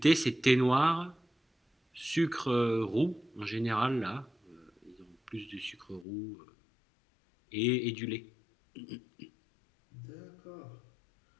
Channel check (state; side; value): drops out; right; at 6.1 s